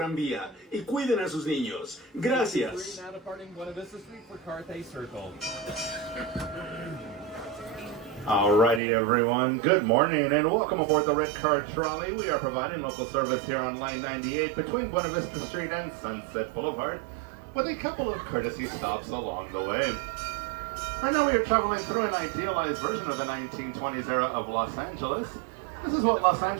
y cuiden a sus niños. Gracias. Now departing Buena Vista Street for Carthay Circle. Alrighty everyone, good morning and welcome aboard the Red Car Trolley. We are providing local service here on Line 98 between Buena Vista Street and Sunset Boulevard with a couple of courtesy stops along the way. Right now we are traveling through an idealized version of the 1920s era of Los Angeles. This is what Los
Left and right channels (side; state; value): left; drops out; at 8.8 s